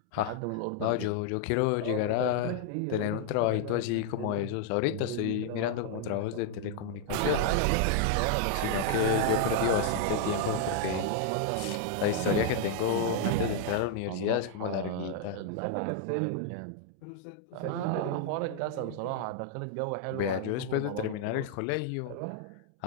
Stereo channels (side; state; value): both; different; correlation 0.00